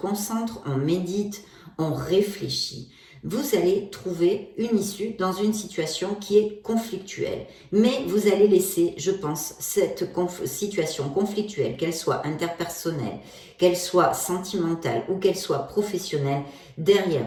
on médite, on réfléchit. Vous allez trouver une issue dans une situation qui est conflictuelle. Mais vous allez laisser, je pense, cette situation conflictuelle, qu'elle soit interpersonnelle, qu'elle soit sentimentale ou qu'elle soit professionnelle, derrière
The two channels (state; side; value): identical; both; correlation 1.00